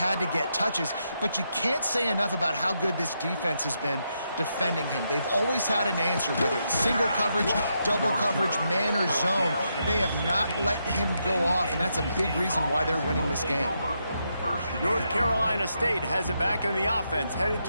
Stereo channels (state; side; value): inverted; both; correlation -0.81